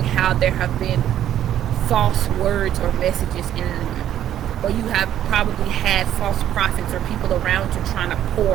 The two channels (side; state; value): left; quieter; 11.3 dB